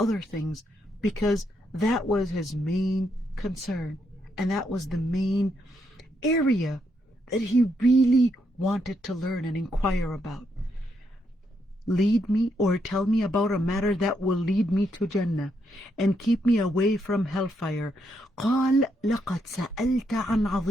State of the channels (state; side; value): normal; both; correlation 0.78